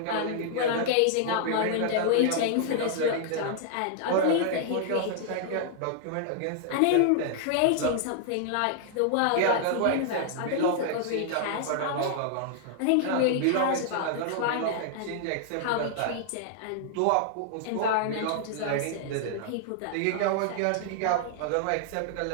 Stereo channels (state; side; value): different; both; correlation -0.01